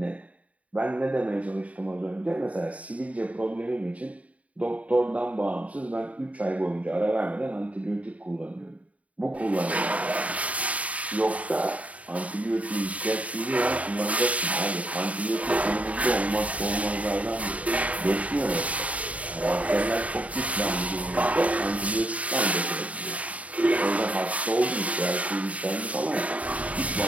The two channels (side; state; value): left; late; 0.068 ms